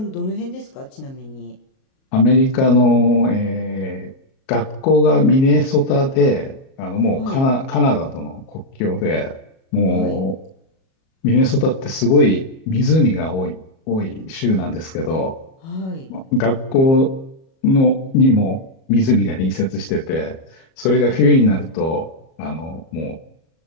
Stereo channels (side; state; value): right; late; 37 ms